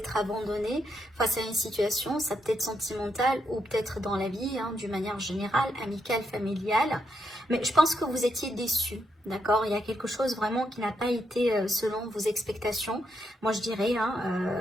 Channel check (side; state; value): both; normal; correlation 0.80